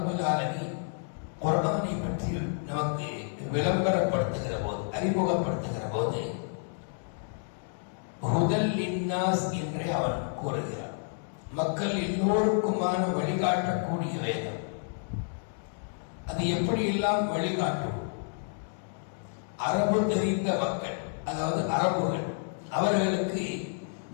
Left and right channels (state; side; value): silent; right; digital silence